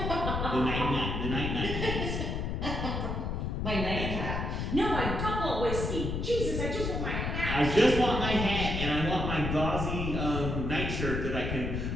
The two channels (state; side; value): noise; left; rumble, 2 dB below the sound